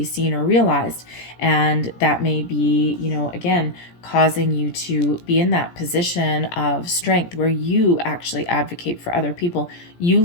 seen or realized. And that may be, again, causing you to be in that position of strength where you actually advocate for other people. You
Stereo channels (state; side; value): late; right; 17 ms